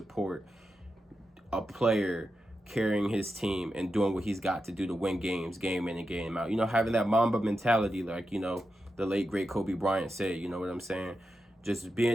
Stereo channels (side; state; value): both; normal; correlation 0.89